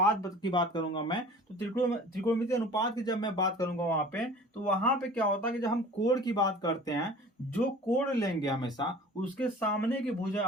की बात करूंगा मैं, तो त्रिकोणमिति अनुपात की जब मैं बात करूंगा वहां पे, तो वहां पे क्या होता है कि जब हम कोण की बात करते हैं, जो कोण लेंगे हमेशा उसके सामने की भुजा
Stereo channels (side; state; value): both; normal; correlation 0.43